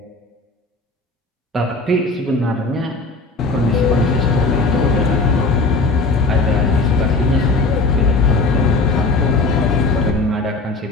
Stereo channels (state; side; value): quieter; right; 3.4 dB